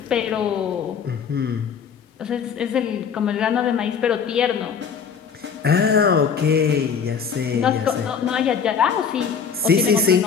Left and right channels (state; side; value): quieter; right; 6.6 dB